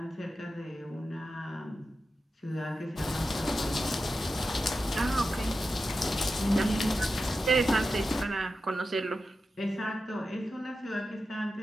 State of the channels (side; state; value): both; normal; correlation 0.91